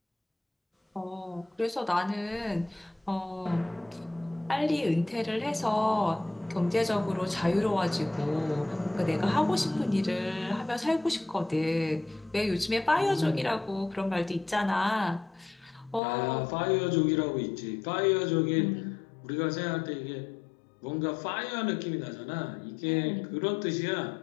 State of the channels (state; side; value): drops out; right; at 16.0 s